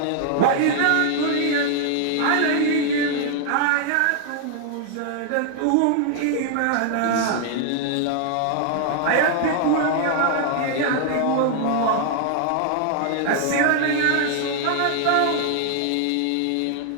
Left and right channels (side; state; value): both; different; correlation 0.00